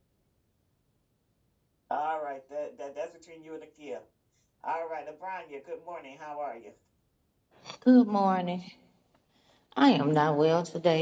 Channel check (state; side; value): identical; both; correlation 1.00